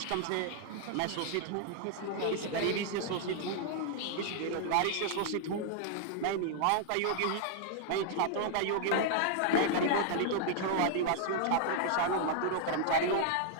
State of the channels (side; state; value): both; different; correlation -0.01